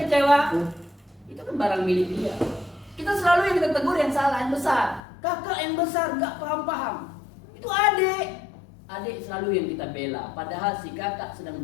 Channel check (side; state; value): right; drops out; at 5.0 s